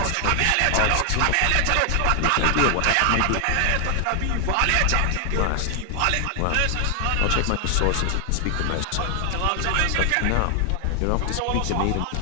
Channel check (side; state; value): both; different; correlation 0.00